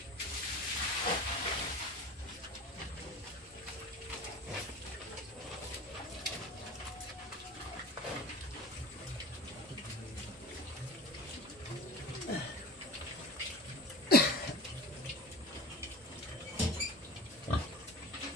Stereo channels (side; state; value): both; normal; correlation 0.37